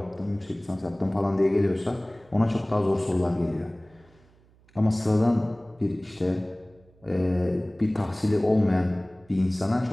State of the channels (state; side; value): noise; right; hum, 30 dB below the sound